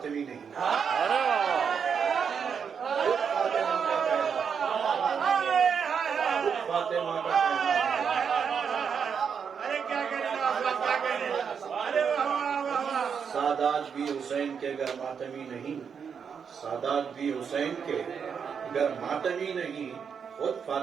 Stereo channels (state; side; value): quieter; left; 6.8 dB